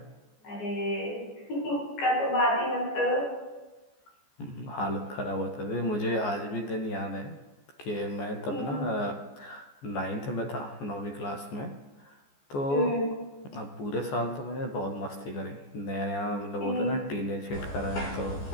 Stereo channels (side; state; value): right; late; 14 ms